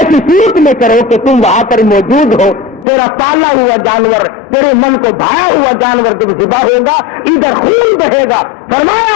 صورت میں کرو کہ تم وہاں پر موجود ہو. تیرا پالا ہوا جانور, تیرے من کو بھایا ہوا جانور جب ذبح ہوگا ادھر خون بہے گا.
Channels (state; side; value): drops out; right; at 2.9 s